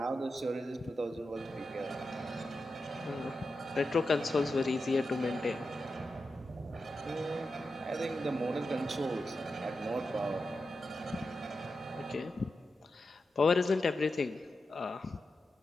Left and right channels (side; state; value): both; normal; correlation 0.89